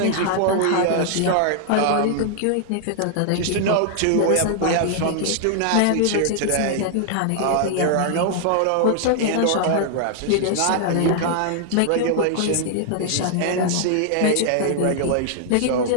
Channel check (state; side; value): different; both; correlation 0.00